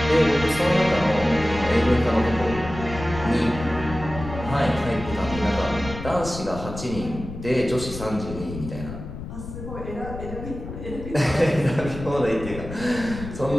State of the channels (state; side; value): noise; left; rumble, 10 dB below the sound